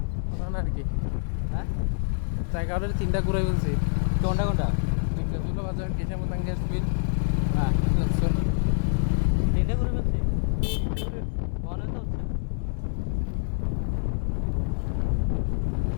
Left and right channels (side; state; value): right; silent; digital silence